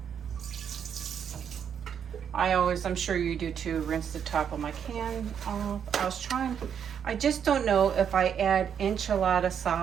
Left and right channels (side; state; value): left; quieter; 8.0 dB